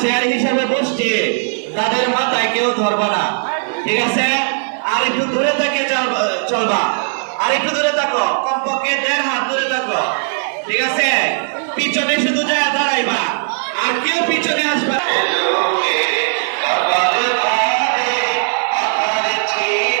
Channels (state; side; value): silent; left; 61 dB below the other